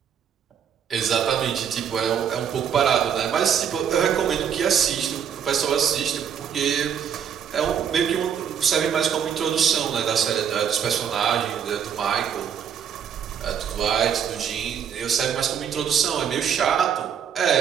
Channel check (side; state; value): left; quieter; 8.1 dB